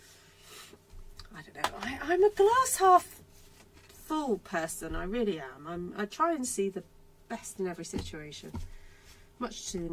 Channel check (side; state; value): both; identical; correlation 1.00